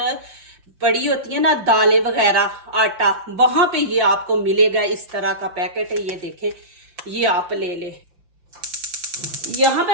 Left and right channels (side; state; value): left; late; 5.8 ms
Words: पड़ी होती है ना दालें वगैरह, आटा, वहां पे ये आपको मिलेगा। इस तरह का पैकेट है, ये देखें, ये आप ले ले। यहाँ